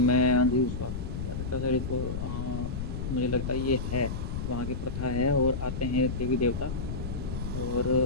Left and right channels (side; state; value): left; noise; rumble, 4 dB below the sound